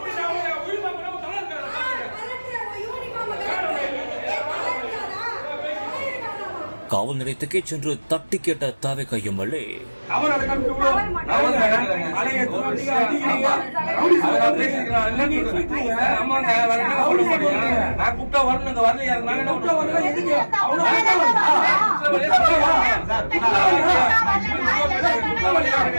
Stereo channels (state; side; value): inverted; both; correlation -1.00